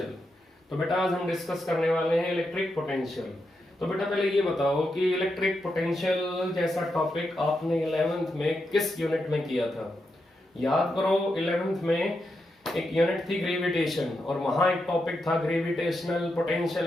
तो बेटा आज हम डिस्कस करने वाले हैं इलेक्ट्रिक पोटेंशियल। तो बेटा पहले ये बताओ कि इलेक्ट्रिक पोटेंशियल जैसा टॉपिक आपने 11th में किस यूनिट में किया था। याद करो 11th में एक यूनिट थी ग्रेविटेशन और वहां एक टॉपिक था gravitational potential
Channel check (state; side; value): normal; both; correlation 0.85